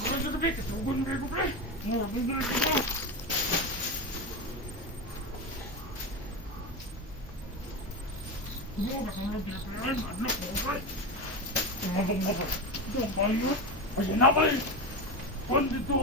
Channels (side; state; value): both; normal; correlation 0.19